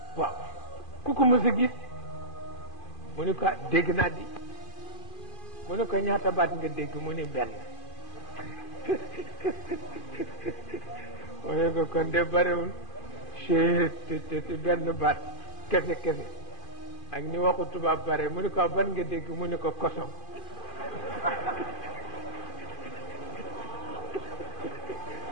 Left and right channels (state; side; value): late; right; 2.5 ms